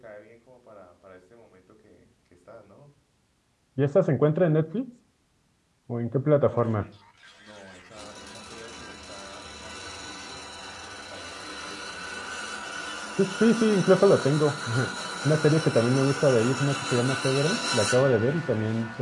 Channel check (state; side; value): identical; both; correlation 1.00